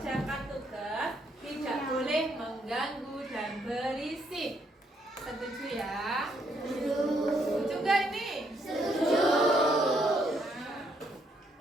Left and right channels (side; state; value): both; normal; correlation 0.72